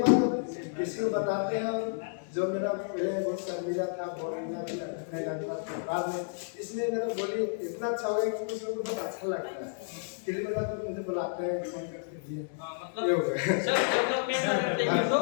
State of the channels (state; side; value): silent; right; digital silence